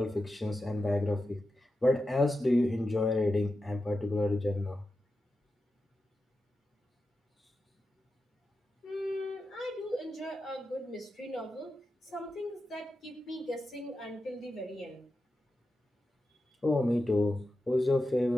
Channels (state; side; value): normal; both; correlation 0.90